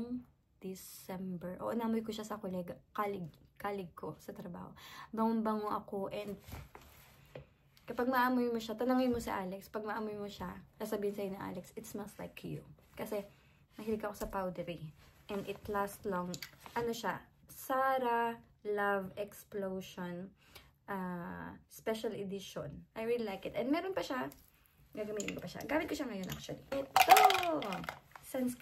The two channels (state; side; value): identical; both; correlation 1.00